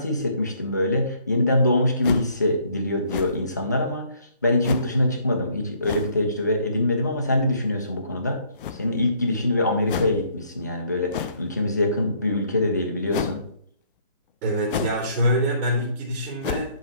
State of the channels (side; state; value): both; inverted; correlation -0.64